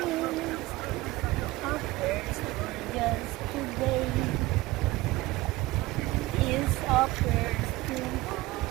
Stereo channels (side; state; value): left; quieter; 19.1 dB